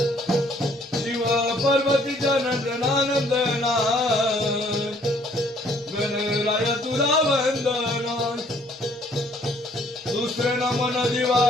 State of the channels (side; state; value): both; normal; correlation 0.62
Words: शिव पार्वतीच्या नंदना गणराया तुला वंदना दुसरे नमन दिवा